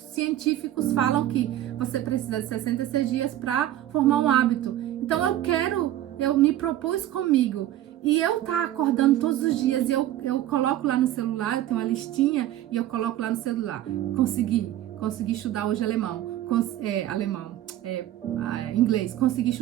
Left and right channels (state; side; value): quieter; left; 13.2 dB